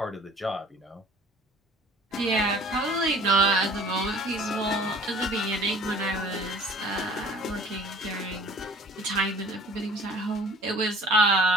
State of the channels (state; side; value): normal; both; correlation 0.49